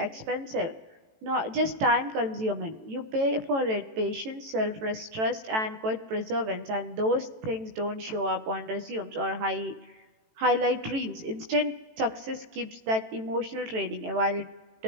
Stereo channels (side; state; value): left; late; 18 ms